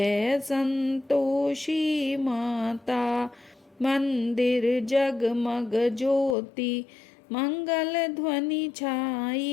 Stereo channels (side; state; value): right; drops out; at 6.4 s